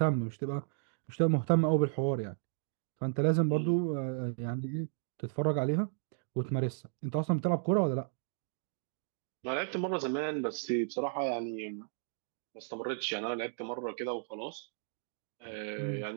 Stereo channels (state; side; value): silent; left; digital silence